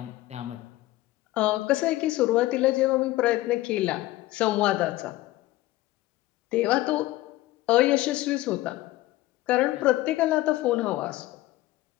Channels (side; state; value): right; quieter; 17.1 dB